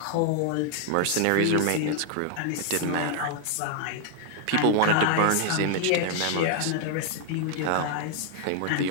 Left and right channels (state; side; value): different; both; correlation 0.00